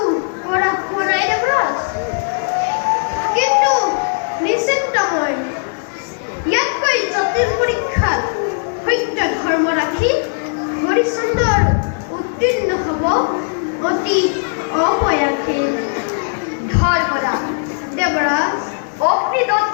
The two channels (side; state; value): right; silent; digital silence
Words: কৰা হোৱা নাই দেৱৰাজ। কিন্তু নিশ্চিন্ত মই ইয়াতকৈ জটিল পৰীক্ষাত সত্য ধৰ্ম ৰাখি হৰিশ্চন্দ্ৰৰ উত্তীৰ্ণ হ'ব অতি অপয়াসে। ধৰ্মৰাজ, দেৱৰাজ,